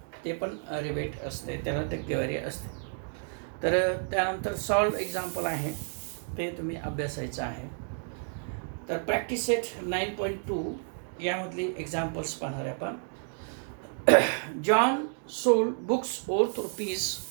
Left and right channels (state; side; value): silent; left; 57 dB below the other